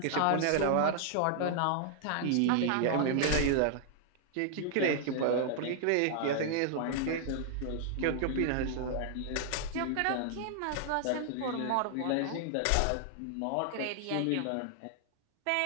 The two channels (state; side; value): different; both; correlation -0.01